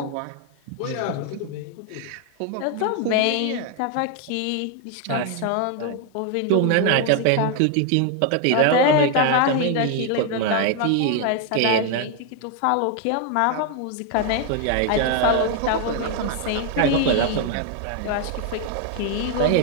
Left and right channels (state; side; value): different; both; correlation 0.01